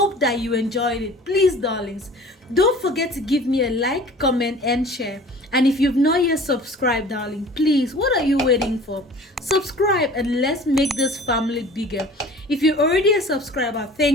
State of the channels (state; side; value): normal; both; correlation 0.44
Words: that you enjoyed it. Please, darlings, don't forget to give me a like, comment, and share. And if you've not yet subscribed, darling, please, what are you waiting for? Subscribe and let's make this family bigger. If you're already a subscriber,